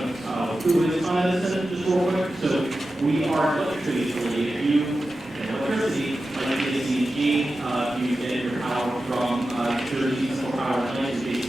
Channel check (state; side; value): normal; both; correlation 0.93